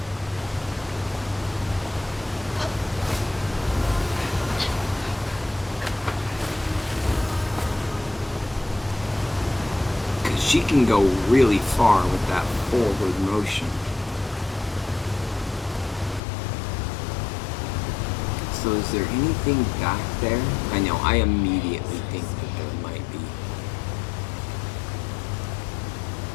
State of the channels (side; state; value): right; drops out; at 16.2 s